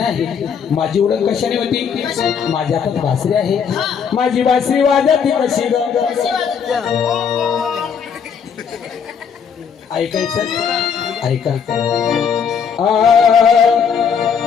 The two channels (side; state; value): right; quieter; 6.9 dB